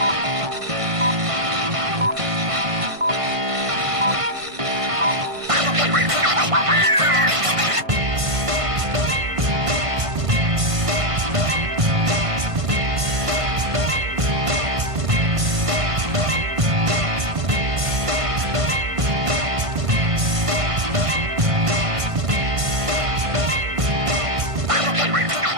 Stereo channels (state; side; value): late; left; 1.5 ms